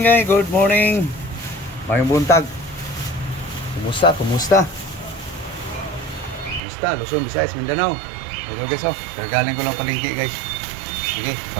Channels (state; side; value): drops out; left; at 6.6 s